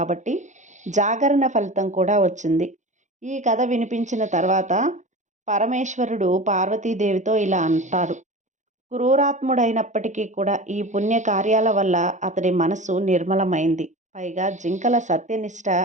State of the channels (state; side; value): late; left; 0.35 ms